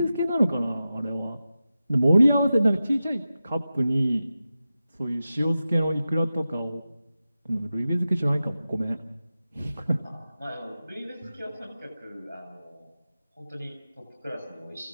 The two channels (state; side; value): inverted; both; correlation -0.93